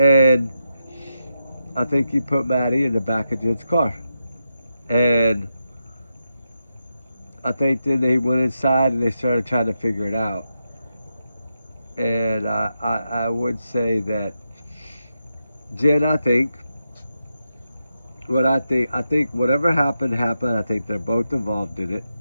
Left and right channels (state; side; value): inverted; both; correlation -0.87